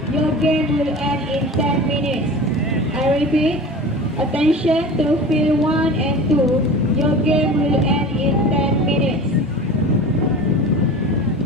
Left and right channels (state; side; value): normal; both; correlation 0.35